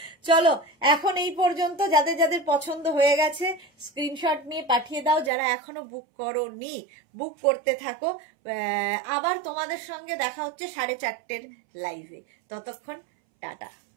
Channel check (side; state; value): left; drops out; at 5.3 s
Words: চলো এখন এই পর্যন্ত, যাদের যাদের পছন্দ হয়ে গেছে স্ক্রিনশট নিয়ে পাঠিয়ে দাও, যারা এখনো বুক করোনি বুক করতে থাকো। আবার তোমাদের সঙ্গে দেখা হচ্ছে 4:30 লাইভে, ততক্ষণ টাটা।